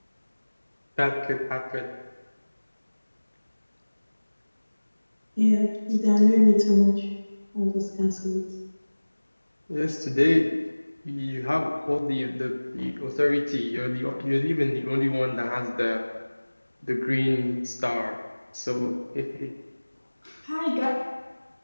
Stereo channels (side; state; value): both; inverted; correlation -1.00